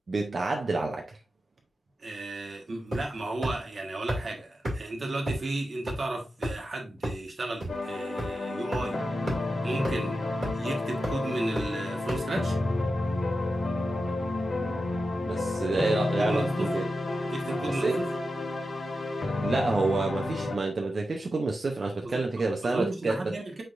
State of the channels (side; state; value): both; normal; correlation 0.90